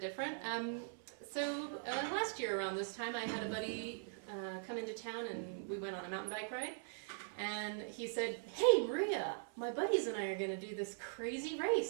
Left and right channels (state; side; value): silent; left; 50 dB below the other